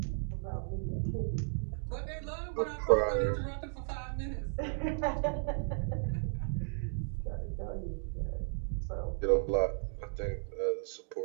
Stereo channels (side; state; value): left; silent; 55 dB below the other